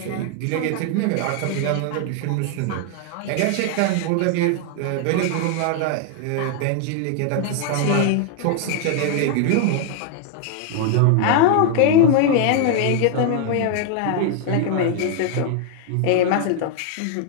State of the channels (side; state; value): both; different; correlation 0.00